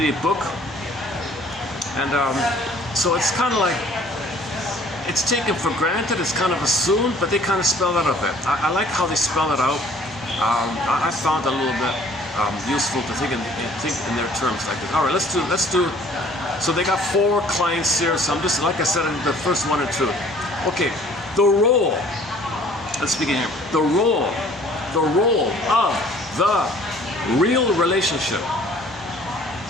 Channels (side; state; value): both; normal; correlation 0.55